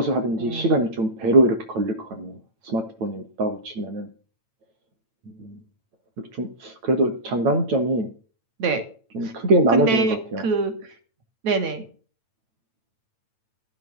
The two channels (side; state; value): left; late; 8.9 ms